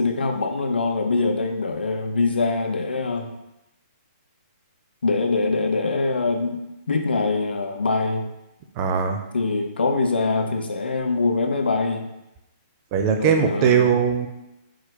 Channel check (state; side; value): inverted; both; correlation -0.62